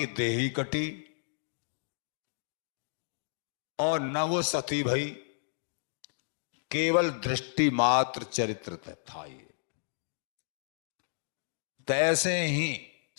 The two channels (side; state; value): right; silent; digital silence